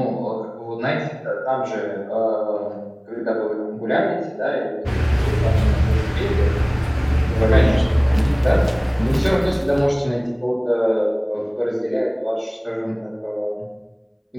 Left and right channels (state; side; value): identical; both; correlation 1.00